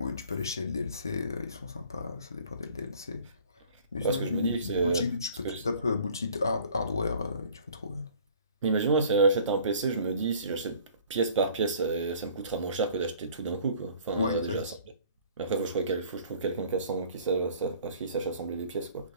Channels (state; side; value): inverted; both; correlation -0.52